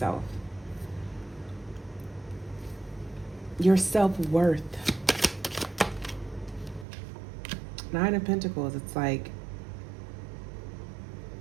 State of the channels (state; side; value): drops out; left; at 6.9 s